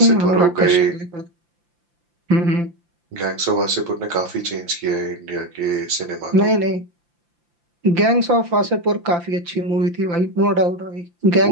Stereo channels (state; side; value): late; left; 5.8 ms